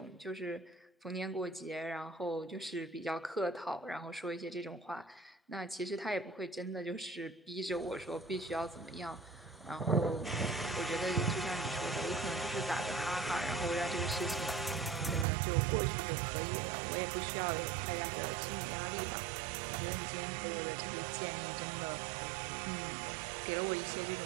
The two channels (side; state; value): left; drops out; at 15.2 s